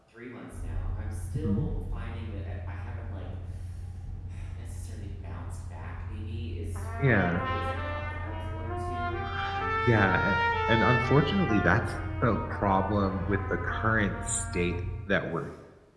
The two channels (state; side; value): identical; both; correlation 1.00